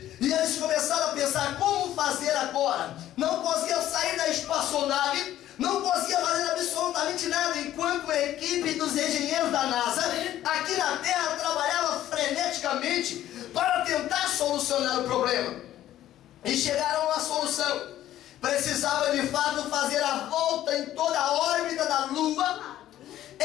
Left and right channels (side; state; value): right; quieter; 12.9 dB